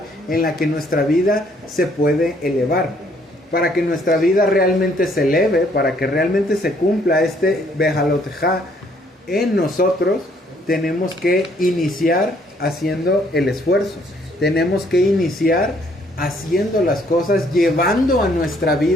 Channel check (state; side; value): normal; both; correlation 0.65